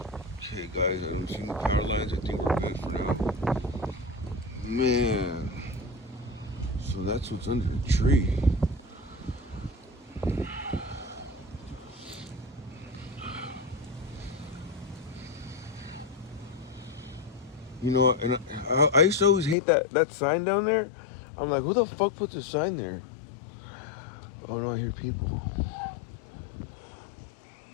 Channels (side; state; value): right; drops out; at 19.6 s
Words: Okay, guys, I'm seeing the power lines. I think we're good for now. Man. So that's what's under the tree. You know, and I used to always hate that sign down there. I'm like, who the fuck puts a sign there? Oh, no, I hear people.